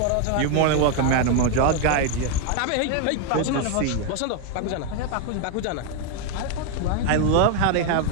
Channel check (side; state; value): both; different; correlation 0.01